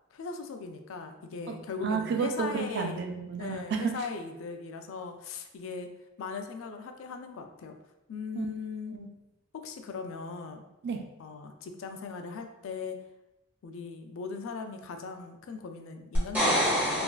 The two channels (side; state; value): both; normal; correlation 0.26